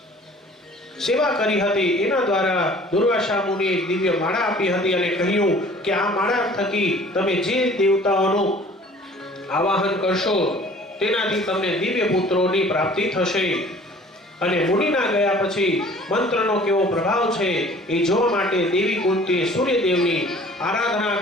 સેવા કરી હતી. એના દ્વારા દુર્વાસા મુનિએ દિવ્ય માળા આપી હતી અને કહ્યું કે આ માળા થકી તમે જે દેવતાઓનું આવાહન કરશો તેનાથી તમને દિવ્ય પુત્રોની પ્રાપ્તિ થશે. અને મુનિના ગયા પછી મંત્રનો કેવો પ્રભાવ છે એ જોવા માટે દેવી કુંતીએ સૂર્યદેવની આરાધના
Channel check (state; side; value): normal; both; correlation 0.50